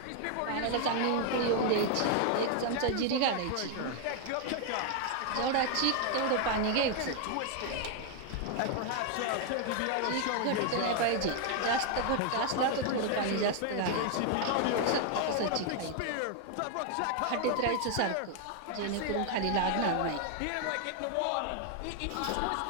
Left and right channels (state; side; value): different; both; correlation 0.00